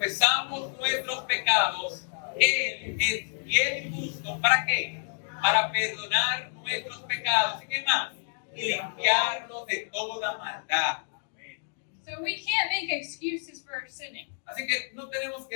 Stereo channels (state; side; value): silent; right; digital silence